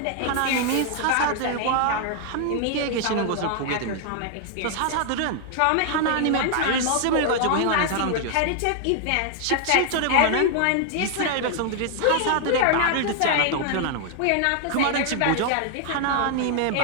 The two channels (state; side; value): different; both; correlation 0.00